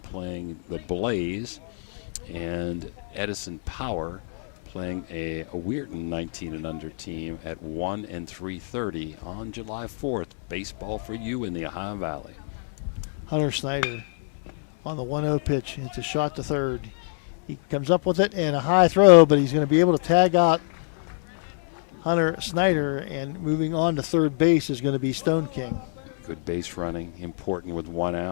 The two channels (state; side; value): silent; right; digital silence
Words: the Blaze, and Edison Power playing a Weirton 19 and under team at 1 and 3:30 on July 4th. Baseball for you in the Ohio Valley. Hunter Snyder on the 1-0 pitch. It's a shot to third. He comes up with it and a high throw, but he's going to be able to tag out Hunter Snyder, and moving on to third base is going to be Stone King. Good base running, important with 1